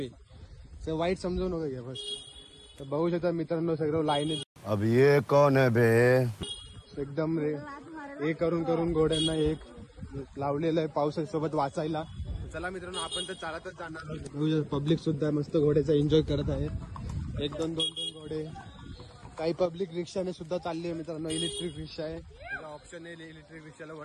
वाईट समजू नका घ्या बस. तर बघू शकता मित्रांनो सगळं लाईन. अब ये कौन है बे? एकदम हे करून घोड्यांना एक लावलेलं आहे पावसासोबत वाचायला. चला मित्रांनो आपण तर चालतच जाणार. पब्लिक सुद्धा मस्त घोड्याचा एन्जॉय करत आहे. 1-2 घोडे. काही पब्लिक रिक्षाने सुद्धा चालली आहे मित्रांनो. इलेक्ट्रिक रिक्षा आहे, ऑप्शन आहे इलेक्ट्रिक रिक्षाला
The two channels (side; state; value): both; identical; correlation 1.00